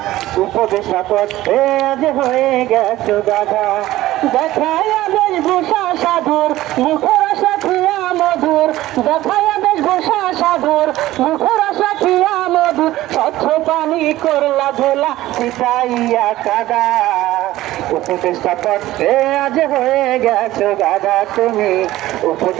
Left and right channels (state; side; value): quieter; left; 15.9 dB